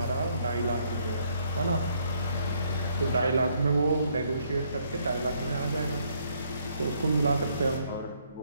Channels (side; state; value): both; inverted; correlation -0.70